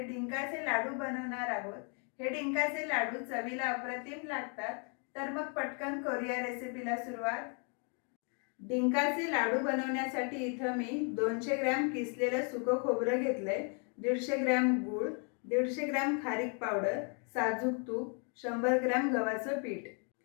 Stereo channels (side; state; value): right; quieter; 39.5 dB